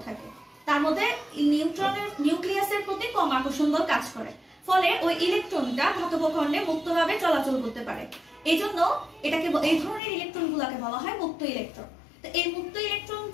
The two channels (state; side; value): drops out; right; at 10.0 s